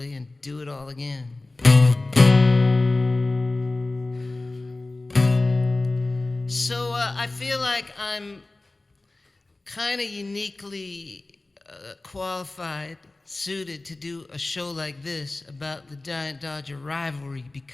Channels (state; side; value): quieter; right; 3.0 dB